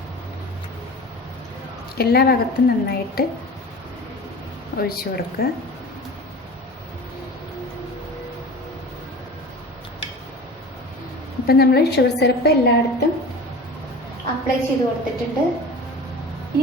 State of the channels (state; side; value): normal; both; correlation 0.36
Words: എല്ലാ ഭാഗത്തും നന്നായിട്ട് ഒഴിച്ചു കൊടുക്കുക. അപ്പം നമ്മൾ ഷുഗർ സിറപ്പ് എല്ലായിടത്തും അപ്ലൈ ചെയ്ത് കൊടുത്തിട്ടുണ്ട്.